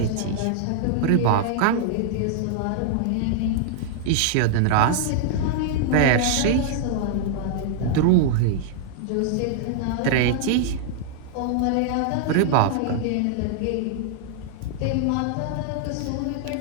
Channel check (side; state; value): both; different; correlation -0.01